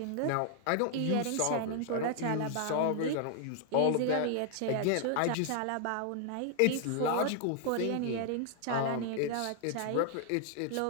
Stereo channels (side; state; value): both; different; correlation 0.00